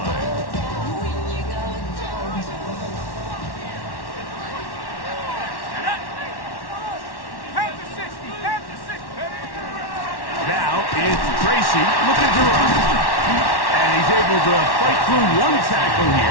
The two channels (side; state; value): right; late; 1.1 ms